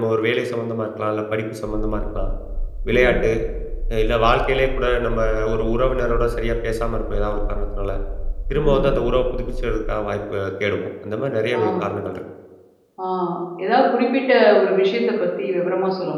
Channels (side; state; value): both; identical; correlation 1.00